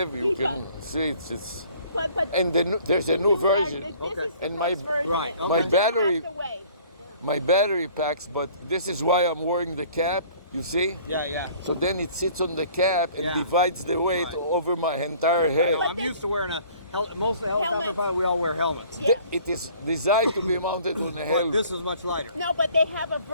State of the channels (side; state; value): both; inverted; correlation -0.53